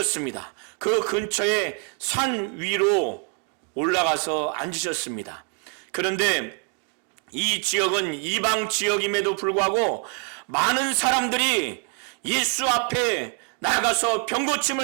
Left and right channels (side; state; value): left; quieter; 37.6 dB